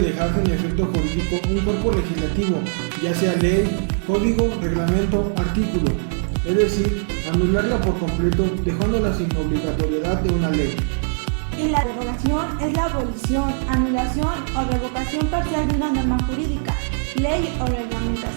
sin efecto jurídico un cuerpo legislativo, ya sea ley, código, reglamento, artículo, es decir, anularla por completo, dejándola sin obligatoriedad de una ley. Y la derogación es la abolición, anulación o revocación parcial de una norma jurídica, ley o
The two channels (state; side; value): silent; left; 63 dB below the other